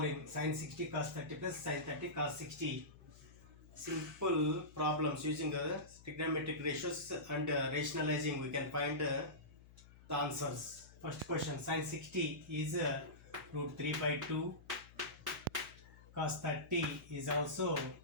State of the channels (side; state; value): left; noise; hum, 21 dB below the sound